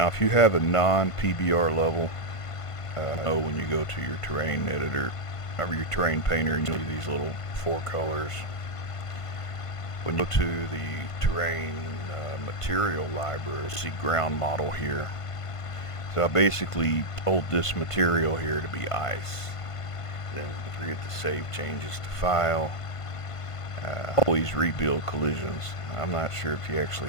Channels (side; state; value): right; late; 1.5 ms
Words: if you have a non-PBR level, know when you go to your terrain editor or your terrain painter and you see these little four colors. When you go to the terrain material library, you see ground model here. So I basically told this material here to be ice. Then forget to save changes to file. Always rebuild collisions. I'm not sure if you